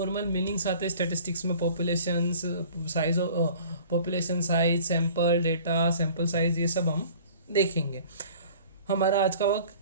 मीनिंग्स आते हैं स्टेटिस्टिक्स में, population size, sample data, sample size, ये सब हम देखेंगे। हमारा आज का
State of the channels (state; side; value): inverted; both; correlation -0.48